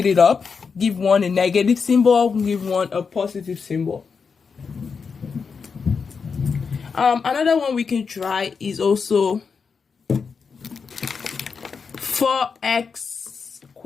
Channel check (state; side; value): quieter; right; 5.5 dB